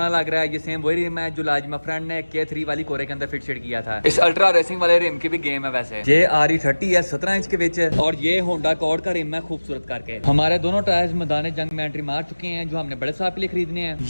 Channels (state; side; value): inverted; both; correlation -1.00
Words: लग रहा है। ये सेम वही रिम है जो लाजिमा फ्रेंड ने K3 वाली कोरे के अंदर फिट शेड किया था। इस अल्ट्रा रेसिंग वाले रिम की भी गेम है वैसे। ये RE30 है 17 इंच के बीच और ये होंडा कॉर्ड का रिम है खूबसूरत करके। हमारे दोनों टायर्स मैदान जंग में एंट्री मार चुके हैं जो हमने बड़े साहब के लिए खरीदने हैं।